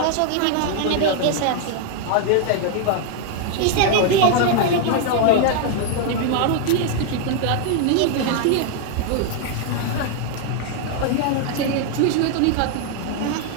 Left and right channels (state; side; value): different; both; correlation 0.00